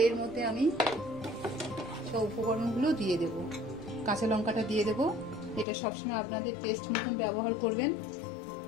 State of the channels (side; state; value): right; drops out; at 5.7 s